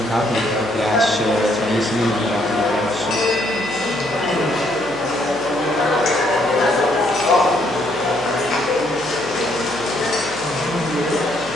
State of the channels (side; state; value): left; noise; hum, 20 dB below the sound